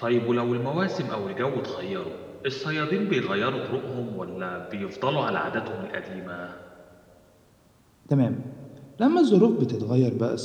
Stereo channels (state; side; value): identical; both; correlation 1.00